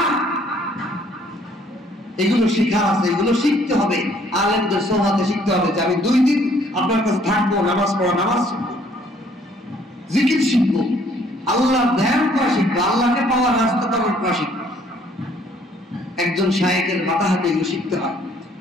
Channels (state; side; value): normal; both; correlation 0.62